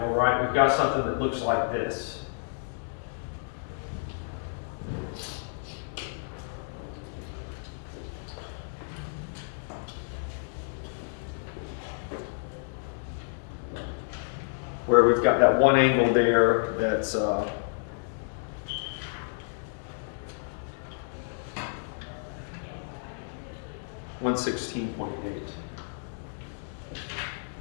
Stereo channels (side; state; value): right; silent; digital silence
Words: right, we've got something that looks like this. Where we've got that one angle there that's 116.8.